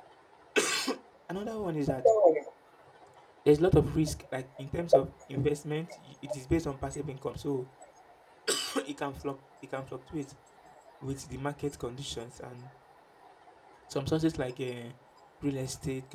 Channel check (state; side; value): identical; both; correlation 1.00